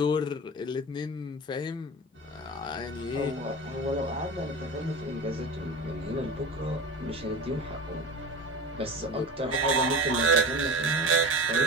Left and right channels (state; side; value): normal; both; correlation 0.31